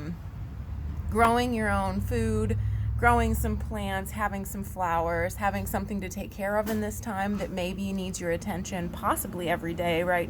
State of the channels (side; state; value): both; identical; correlation 1.00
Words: growing your own food, growing some plants, having some flowers, having something to take care of in this time that maybe needs your attention possibly every day right